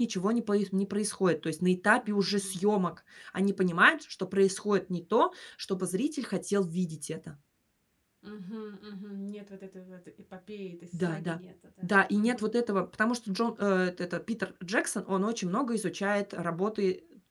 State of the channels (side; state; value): both; identical; correlation 1.00